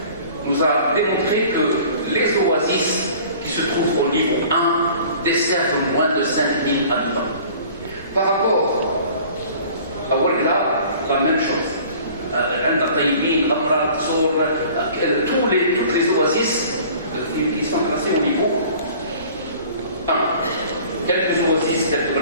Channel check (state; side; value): inverted; both; correlation -0.48